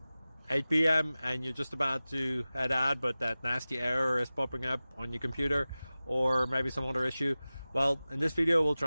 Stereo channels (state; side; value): inverted; both; correlation -0.97